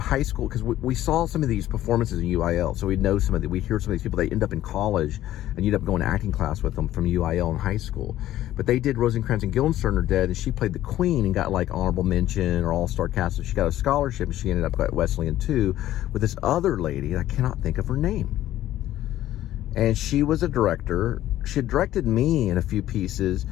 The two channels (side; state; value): right; quieter; 13.6 dB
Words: school, because we saw some of these performances in UIL, so we'd hear some of these people. They end up in college, and you'd end up going to acting class with them from UIL in high school. But they did Rosencrantz and Guildenstern Are Dead, and she played the Queen and got like honorable mention or all-star cast. So she got a scholarship, and she ended up at Wesleyan too, with this other lady, I cannot think of her name. And she was a director. She had directed me in a few pieces,